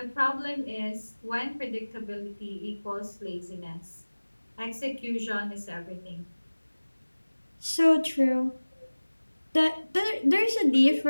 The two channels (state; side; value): inverted; both; correlation -1.00